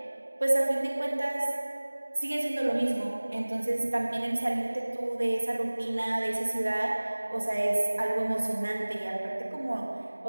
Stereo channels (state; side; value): inverted; both; correlation -1.00